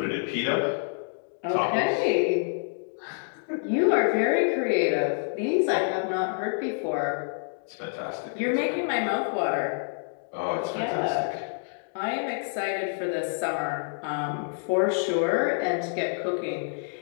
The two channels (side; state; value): right; silent; digital silence